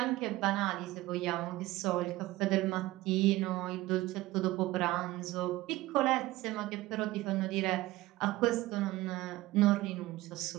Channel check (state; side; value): quieter; left; 18.1 dB